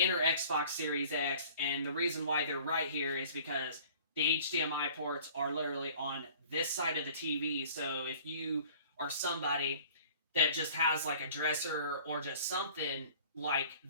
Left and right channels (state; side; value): inverted; both; correlation -0.50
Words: our Xbox Series X, and the reason why they're right here is because the HDMI ports are literally on this side of the TV. So if you are somebody that just has like a dresser or just something like